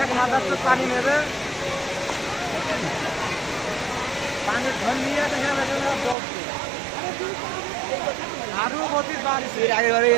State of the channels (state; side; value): drops out; left; at 6.2 s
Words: মাদ্রাসা পানি নেবে পানি ধন নিয়ে দেখা যাবে দৌড়ছে আরো গতি বাড়ছে আগে বাড়ি